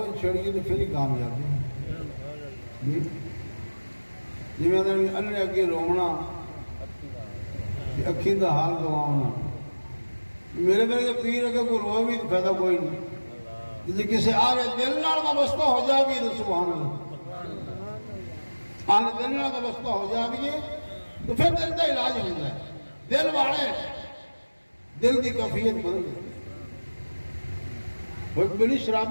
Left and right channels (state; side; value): inverted; both; correlation -1.00